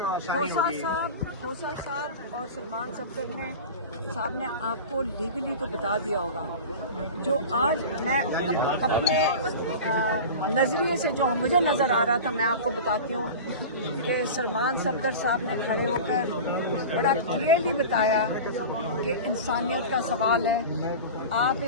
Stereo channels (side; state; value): both; inverted; correlation -0.31